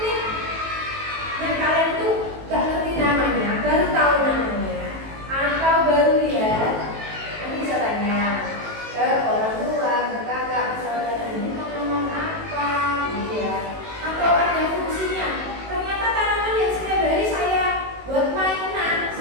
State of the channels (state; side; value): late; left; 18 ms